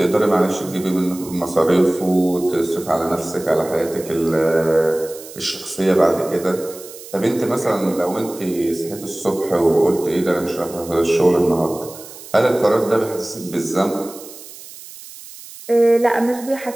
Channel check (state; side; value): noise; right; hiss, 16 dB below the sound